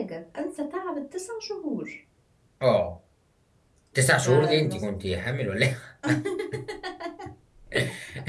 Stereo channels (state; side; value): identical; both; correlation 1.00